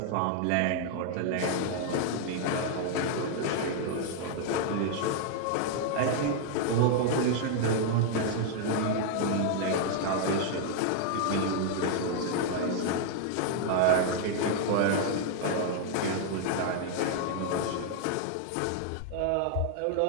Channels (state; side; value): different; both; correlation 0.00